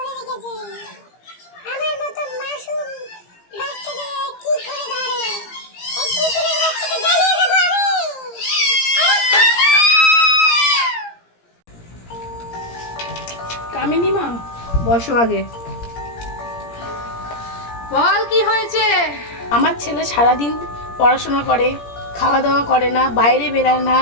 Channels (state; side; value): late; right; 17 ms